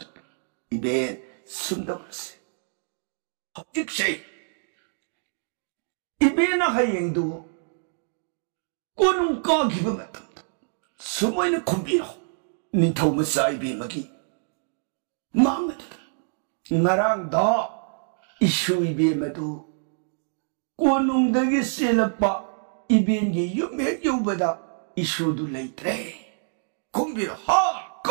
इबे सुंदरसे हजिक से इबे ना हायंदु कोनुं का गिब मतम सुमोइन खुंबिरो निथौ मसा इबे मगी मांगत नरांग दा इशु इबे मधु कोनुंगदगी सेलपा इबेंगी युमे युबदा इशु दु लेत्रे खुंबिर हा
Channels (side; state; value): left; silent; digital silence